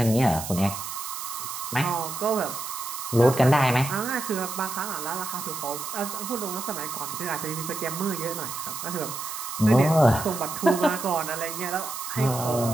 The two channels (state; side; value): noise; right; hiss, 7 dB below the sound